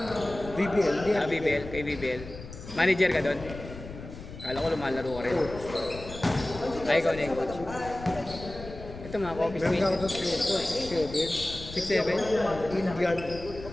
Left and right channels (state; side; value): noise; left; rumble, 13 dB below the sound